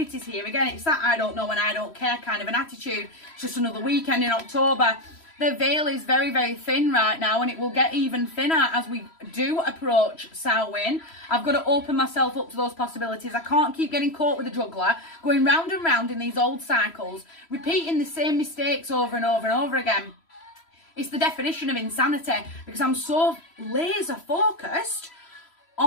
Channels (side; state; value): right; late; 3.0 ms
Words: here. Again, it's that I don't know and I don't care kind of an attitude. It's just another weekend in October. The veil is very, very thin right now and it will get even thinner as we do approach Samhain. I've got to open myself up to those possibilities. I can't keep getting caught with a juggler, going round and round in these old cycles, repeating the same mistakes over and over and over again. It's the definition of insanity because I'm so laser focused